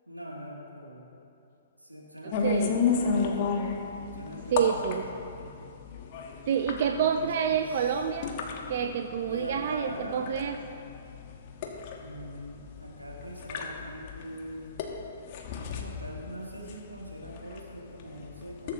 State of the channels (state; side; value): inverted; both; correlation -0.44